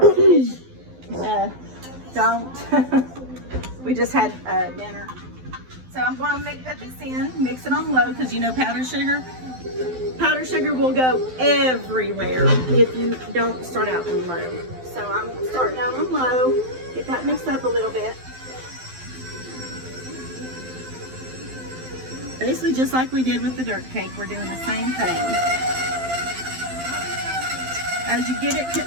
don't. We just had dinner. So I'm going to put this in, mix it on low, because you know powdered sugar will go everywhere if you don't start out on low. So I'm starting out on low, get that mixed up a little bit. Basically just like we did with the dirt cake, we're doing the same thing. As you get it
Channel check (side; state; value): left; late; 12 ms